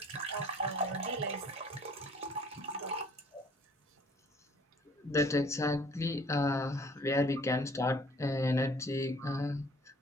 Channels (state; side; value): normal; both; correlation 0.55